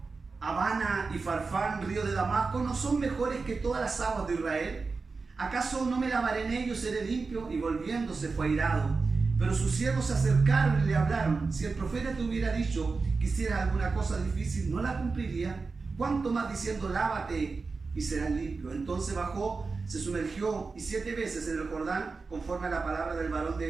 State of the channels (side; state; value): left; quieter; 4.3 dB